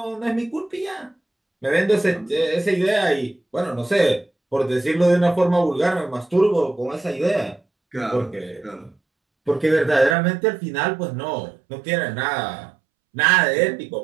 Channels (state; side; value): drops out; left; at 10.2 s